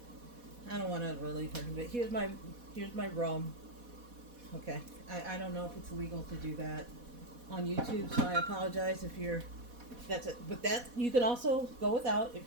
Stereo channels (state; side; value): late; left; 4.1 ms